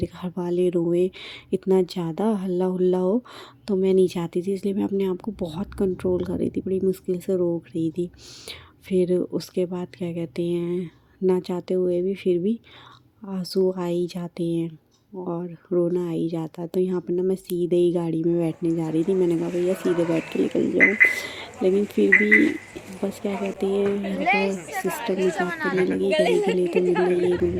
घर वाले रोएं, इतना ज़्यादा हल्ला हुल्ला हो। तो मैं नहीं चाहती थी, इसलिए मैं अपने आप को बहुत कंट्रोल कर रही थी, बड़ी मुश्किल से रोक रही थी। फिर उसके बाद क्या कहते हैं, ना चाहते हुए भी फिर भी आंसू आ ही जाते हैं और रोना आ ही जाता है। तो यहाँ पर ना मैं सीधे ही गाड़ी में बैठने जा रही थी, मैंने कहा भैया सीधे बैठ के निकल जाऊँ, लेकिन फिर भी बस क्या कहते हैं, यहाँ पर सिस्टर मजाक करने लगी, गले गले तो मिल ले, ये मिल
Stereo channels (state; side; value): identical; both; correlation 1.00